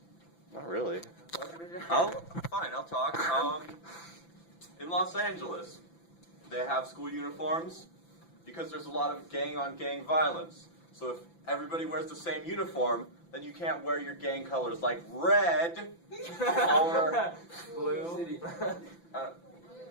Not really. I'll talk. In Los Angeles, they have school uniforms because there's a lot of gang-on-gang violence. So if everybody wears the same uniform, then you can't wear your gang colors like red or Blue.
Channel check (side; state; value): right; late; 5.9 ms